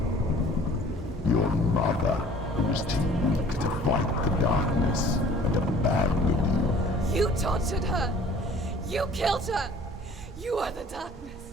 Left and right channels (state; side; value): normal; both; correlation 0.51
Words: Your mother, who was too weak to fight the darkness and abandoned you. You tortured her! You killed her! You are the darkness!